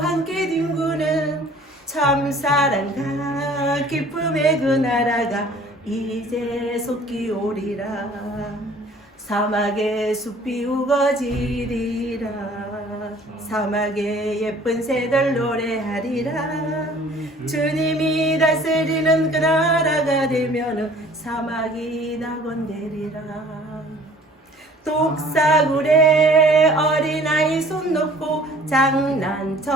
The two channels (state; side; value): normal; both; correlation 0.52